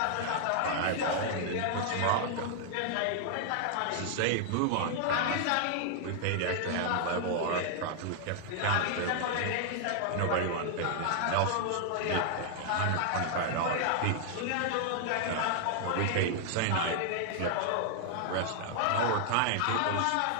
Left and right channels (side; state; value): both; different; correlation -0.01